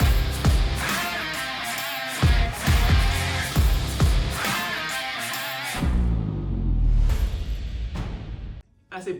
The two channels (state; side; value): identical; both; correlation 1.00